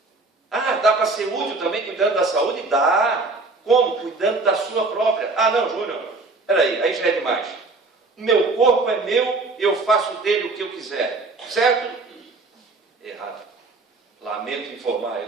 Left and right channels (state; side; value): quieter; left; 3.5 dB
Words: Ah, dá para ser útil também cuidando da saúde? Dá. Como? Cuidando da sua própria. Ah, não, Júnior, peraí, aí já é demais. O meu corpo é meu, eu faço dele o que eu quiser. Certo? Errado. Lamento informar,